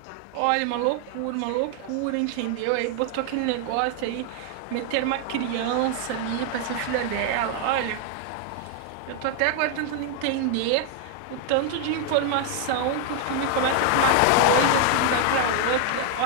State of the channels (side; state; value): both; different; correlation 0.00